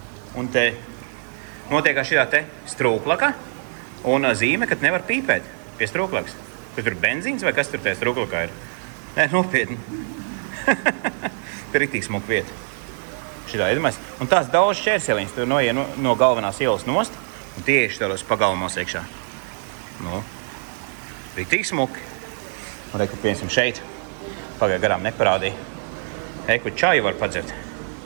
un te notiekā šī te strūklaka un zīme, ka nevar pīpēt pie strūklakas. Kur tur benzīns vai kas tur tajā strūklakā ir? Nē, nopietni. Tur ir tik smuka vieta. Šitā, iedomājies. Un tās daudz šķērseliņas, tur noiet no galvenās ielas nost, un tieši tādos pagalmos iekšā. Nu, ir tik smuki. Un reku, piemēram, šeit. Pagāja garām neparādīja. Eku čaju var padzert.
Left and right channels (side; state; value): left; silent; digital silence